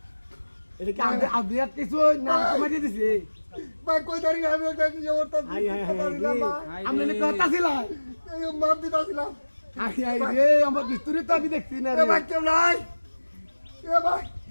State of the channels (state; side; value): inverted; both; correlation -1.00